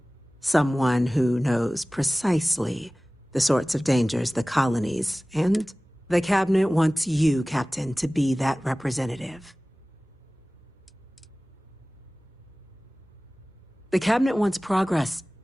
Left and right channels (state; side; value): normal; both; correlation 0.98